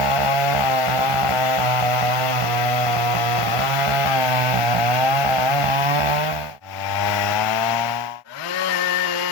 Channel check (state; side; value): late; left; 1.4 ms